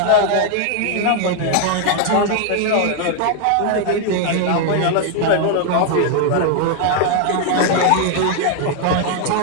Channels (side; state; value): both; different; correlation 0.00